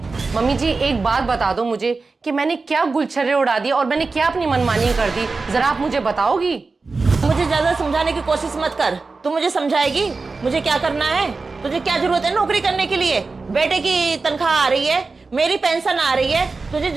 मम्मी जी एक बात बता दो मुझे कि मैंने क्या गुलछर्रे उड़ा दिए और मैंने क्या अपनी मनमानी कर दी, जरा आप मुझे बताओगी? मुझे ज्यादा समझाने की कोशिश मत कर, तू मुझे समझाएगी मुझे क्या करना है। तुझे क्या जरूरत है नौकरी करने के लिए? बेटे की तनख्वाह आ रही है, मेरी पेंशन आ रही है, तुझे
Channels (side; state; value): left; quieter; 4.0 dB